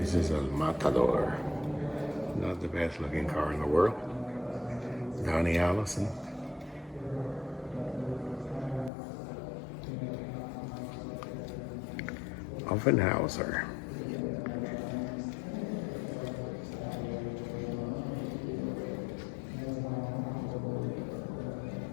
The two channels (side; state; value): right; drops out; at 8.9 s